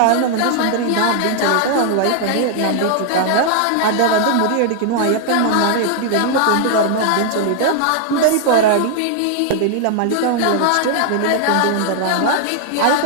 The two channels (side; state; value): both; different; correlation 0.00